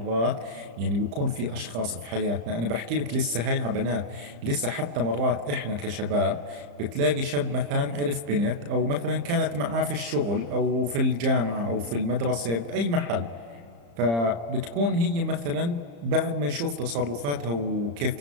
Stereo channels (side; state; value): left; late; 35 ms